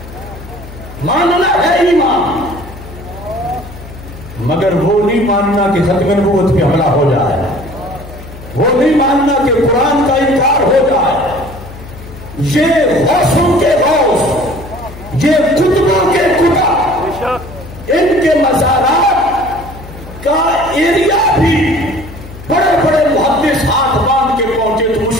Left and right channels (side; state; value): left; noise; hum, 16 dB below the sound